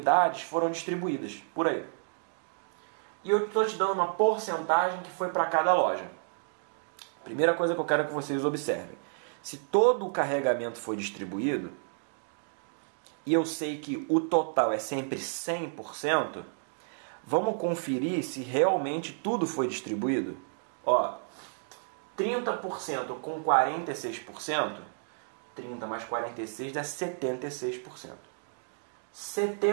foram distribuídas por aí. E eu estou te dando uma porcentagem que foi para cada loja. Primeira coisa que eu quero que vocês observem. Se todo o carregamento foi distribuído, e eu sei que o total é sempre 100%, vamos conferir se realmente tudo foi distribuído? Ó, 30% com 46%, 30 mais 46 dá 76%.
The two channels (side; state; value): left; silent; digital silence